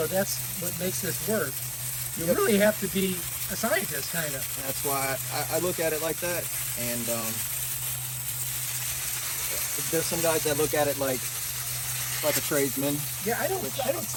that's what makes this work. You really have to be a scientist, kind of. That's why I look at it like that. And there's some guys that look at it like a tradesman. Yeah, I don't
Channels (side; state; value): both; identical; correlation 1.00